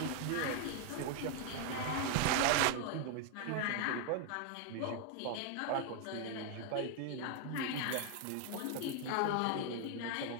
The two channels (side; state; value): both; different; correlation 0.00